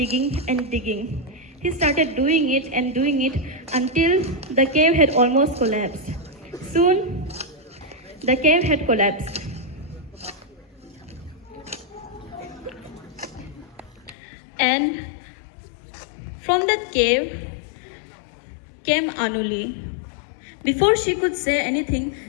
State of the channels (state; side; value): drops out; right; at 14.2 s